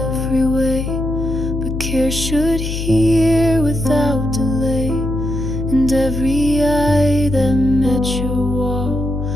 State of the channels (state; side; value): noise; left; hum, 4 dB below the sound